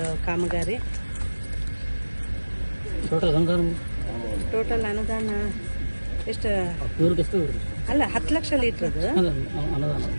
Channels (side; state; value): both; inverted; correlation -1.00